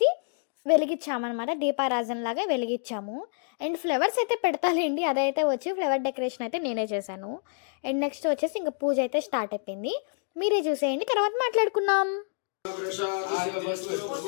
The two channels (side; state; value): right; silent; 59 dB below the other